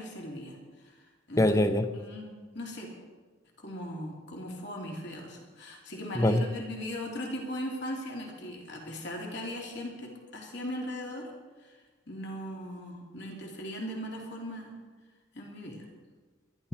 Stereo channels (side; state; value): both; normal; correlation 0.68